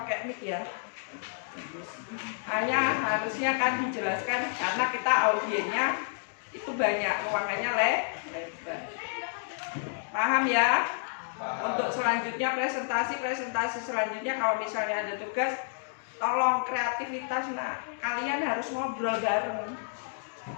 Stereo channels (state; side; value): silent; right; digital silence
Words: mic ya. Hanya harusnya kan dijelaskan karena kita audiennya itu banyak, ruangannya lebar. Paham ya? Untuk selanjutnya presentasi selanjutnya kalau misalnya ada tugas, tolong kreativitas. Nah, kalian harus ngobrol bareng.